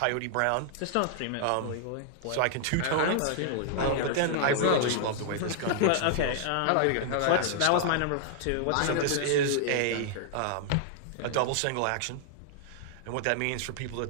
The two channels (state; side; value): different; both; correlation -0.01